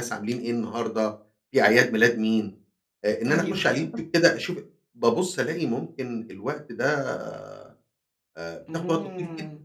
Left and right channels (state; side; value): identical; both; correlation 1.00